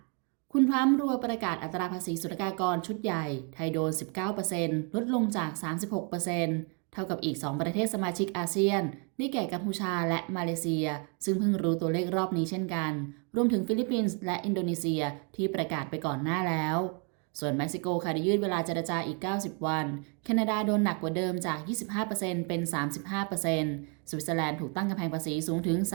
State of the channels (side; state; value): left; quieter; 37.2 dB